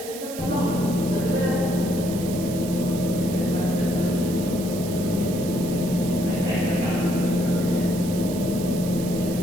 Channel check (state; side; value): noise; right; hiss, 12 dB below the sound